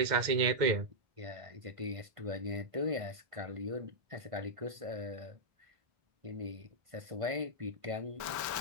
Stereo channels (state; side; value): late; left; 1.5 ms